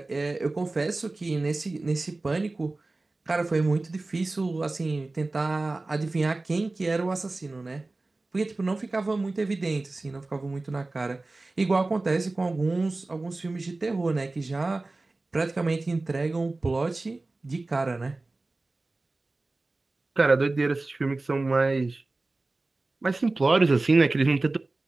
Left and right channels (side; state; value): left; quieter; 3.2 dB